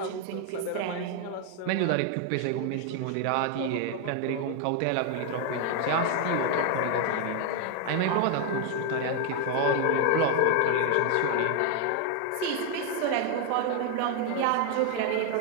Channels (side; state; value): both; different; correlation 0.01